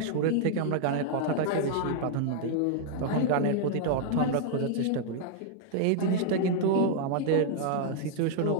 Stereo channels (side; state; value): both; different; correlation 0.00